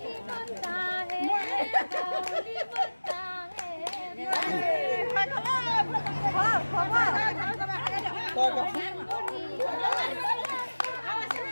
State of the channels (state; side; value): inverted; both; correlation -1.00